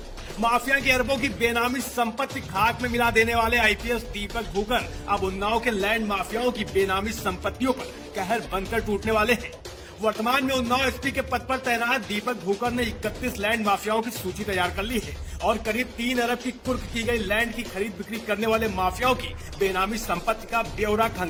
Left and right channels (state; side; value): identical; both; correlation 1.00